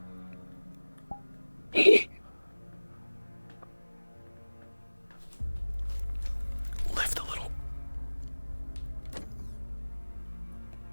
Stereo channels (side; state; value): both; inverted; correlation -1.00